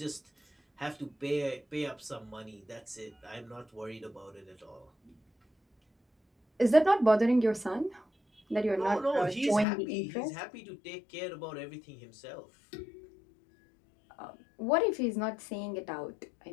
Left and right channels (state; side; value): drops out; right; at 9.7 s